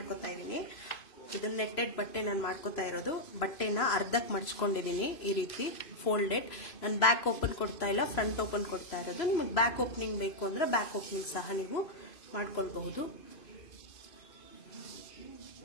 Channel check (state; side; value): late; right; 3.0 ms